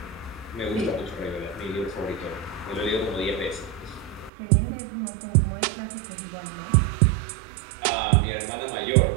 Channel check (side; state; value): left; drops out; at 4.3 s